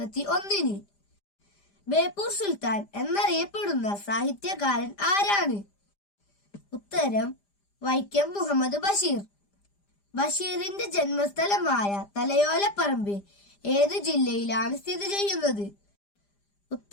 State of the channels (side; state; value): right; late; 5.0 ms